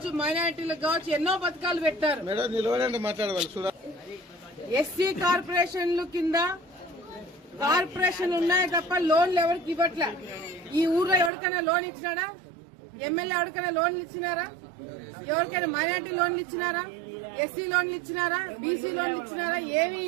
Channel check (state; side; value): drops out; left; at 11.3 s